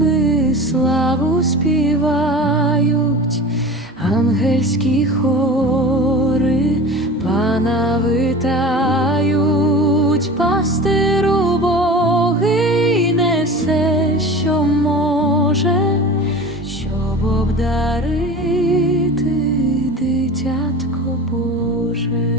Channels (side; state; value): both; normal; correlation 0.35